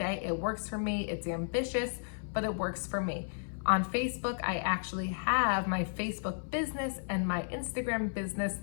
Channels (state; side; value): silent; right; 55 dB below the other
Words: It works for me. It's ambitious, but it works for me. On Facebook, I actually have my Facebook business and my Instagram business